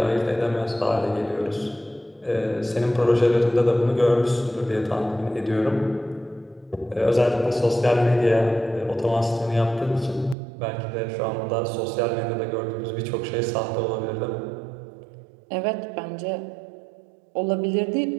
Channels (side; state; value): left; drops out; at 10.4 s